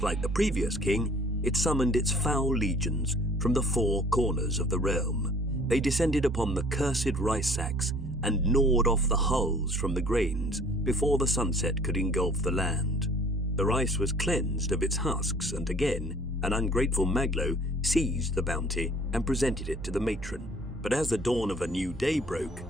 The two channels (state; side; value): normal; both; correlation 0.53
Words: like the previous king, it summoned its foul legions from the 4 corners of the realm. They descended upon the cursed rice sacks and gnawed off the hulls from the grains before the sunset could engulf the land. The rice was cleansed of its husks, and again, an ungrateful Maglo seized the bounty and presented it to the matron. But as the dawn of a new day broke,